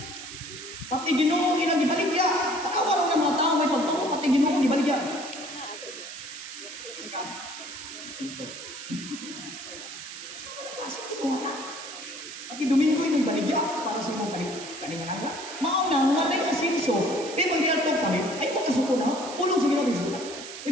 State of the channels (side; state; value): right; noise; hiss, 11 dB below the sound